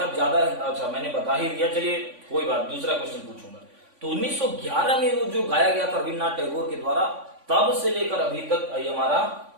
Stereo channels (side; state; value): left; late; 3.5 ms